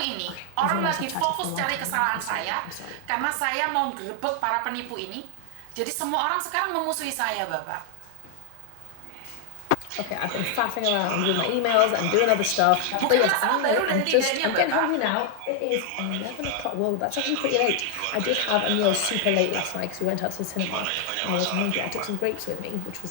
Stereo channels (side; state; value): both; different; correlation 0.00